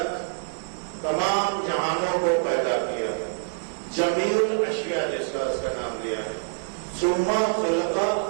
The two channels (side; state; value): left; silent; 61 dB below the other